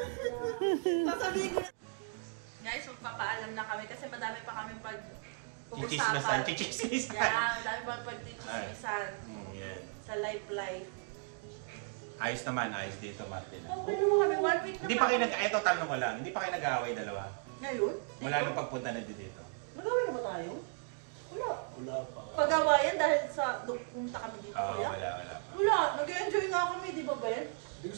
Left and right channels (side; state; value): left; silent; 54 dB below the other